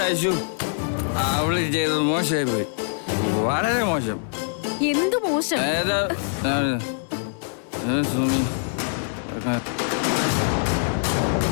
അയച്ചു അവള് ചെയ്തത് മോശമായി പോയി, വളരെ മോശം. എന്തു മോശം? സുമി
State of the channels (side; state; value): right; silent; digital silence